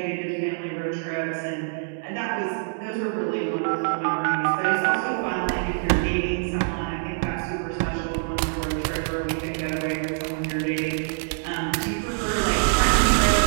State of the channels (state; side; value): silent; left; digital silence